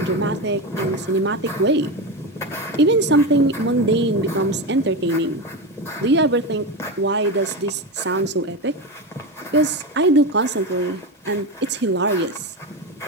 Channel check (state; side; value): normal; both; correlation 0.18